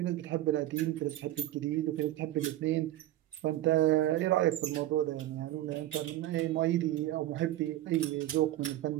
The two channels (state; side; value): quieter; left; 14.5 dB